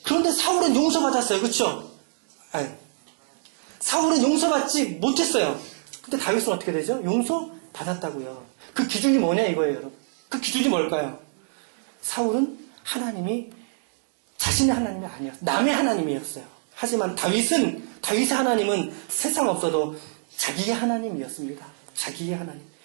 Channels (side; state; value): left; silent; digital silence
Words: 그런데 사울은 용서받았어요. 그렇죠? 아니, 사울은 용서받지 못했어요. 근데 다윗은 어떻게 되죠? 용서받았다고요. 그 기준이 뭐냐 이거예요, 여러분. 그 기준이 뭘까요? 사울은 하나님이 자신의 하나님이 아니었어요. 남의 하나님이었어요. 하지만 다윗의 하나님은 세상 없어도 자기의 하나님이었습니다. 자기의 하나님.